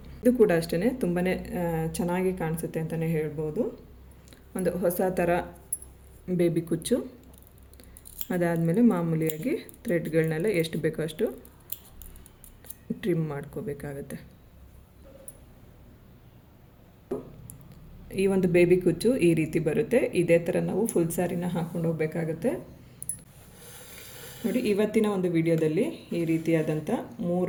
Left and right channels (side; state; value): both; identical; correlation 1.00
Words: ಇದು ಕೂಡ ಅಷ್ಟೇ ತುಂಬಾ ಚೆನ್ನಾಗಿ ಕಾಣಿಸುತ್ತೆ ಅಂತಲೇ ಹೇಳ್ಬೋದು. ಒಂದು ಹೊಸ ಥರ ಬೇಬಿ ಕುಚ್ಚು. ಅದಾದಮೇಲೆ ಮಾಮೂಲಿಯಾಗಿ ಥ್ರೆಡ್ಗಳನ್ನೆಲ್ಲ ಎಷ್ಟು ಬೇಕೋ ಅಷ್ಟು ಟ್ರಿಮ್ ಮಾಡ್ಕೋಬೇಕಾಗತ್ತೆ. ಈ ಒಂದು ಬೇಬಿ ಕುಚ್ಚು ಈ ರೀತಿ ಬರುತ್ತೆ. ಇದೇ ಥರ ನಾವು ಫುಲ್ ಸ್ಯಾರಿನ ಹಾಕ್ಕೊಂಡು ಹೋಗಬೇಕಾಗುತ್ತೆ ನೋಡಿ. ಇವತ್ತಿನ ಒಂದು ವಿಡಿಯೋದಲ್ಲಿ ಈ ರೀತಿಯಾದಂಥ